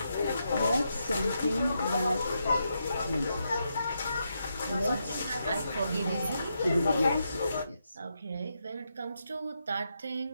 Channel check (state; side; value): inverted; both; correlation -0.83